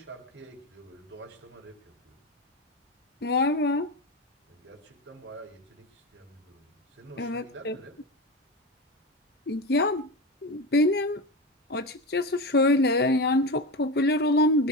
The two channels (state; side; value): normal; both; correlation 0.21